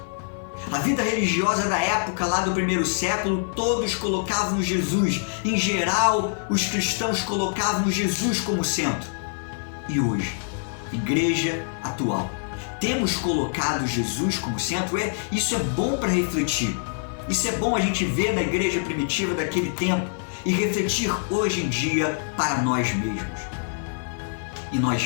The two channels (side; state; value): right; silent; 55 dB below the other